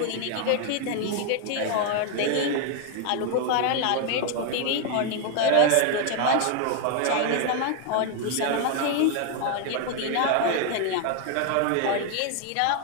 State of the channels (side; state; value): both; different; correlation 0.00